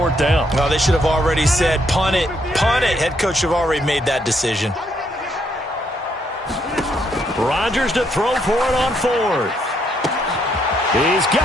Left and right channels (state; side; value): normal; both; correlation 0.73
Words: down. Well, they should have already said, punt it, punt it. Head coach should have already made that decision. Rodgers to throw for it on 4th. He's